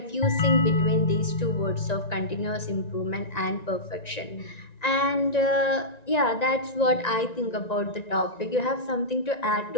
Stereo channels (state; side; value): late; right; 1.9 ms